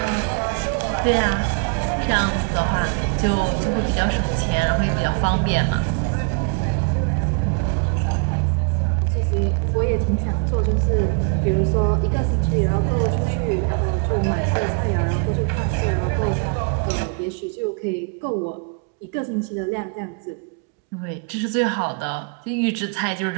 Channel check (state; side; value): quieter; left; 37.3 dB